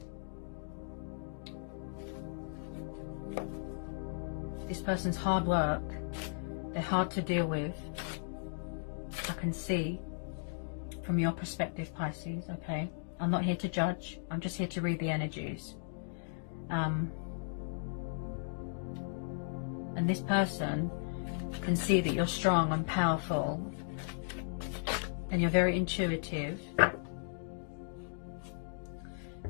This person's hard work. They're hard to deal with. I can see from your perspective, Pisces, okay? I'm not here to judge. I'm just here to read the energies. And this person can see that you're strong and powerful. And you're very intuitive.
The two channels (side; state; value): right; silent; digital silence